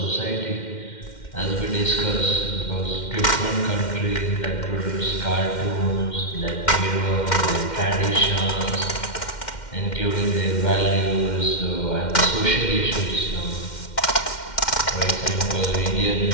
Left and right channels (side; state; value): right; late; 2.1 ms